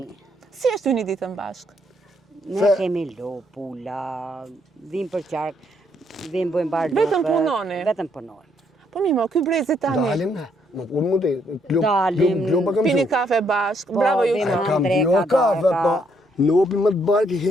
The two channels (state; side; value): normal; both; correlation 0.72